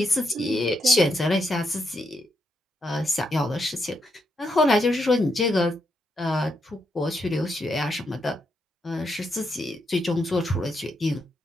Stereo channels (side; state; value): both; normal; correlation 0.80